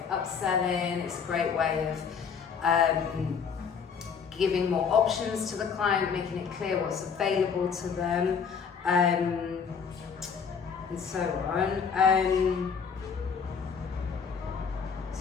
of upselling, it's a great way of giving more options to the client, making it clear what's available to them, and so on.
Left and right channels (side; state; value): right; quieter; 6.4 dB